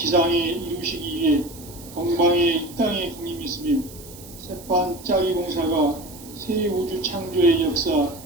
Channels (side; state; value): right; noise; hiss, 18 dB below the sound